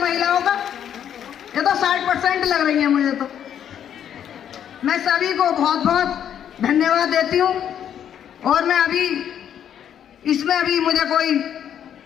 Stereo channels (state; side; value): quieter; right; 9.5 dB